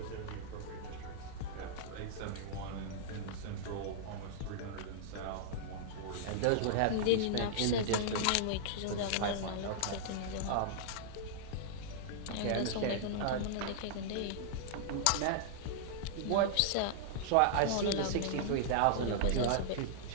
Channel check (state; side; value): different; both; correlation -0.01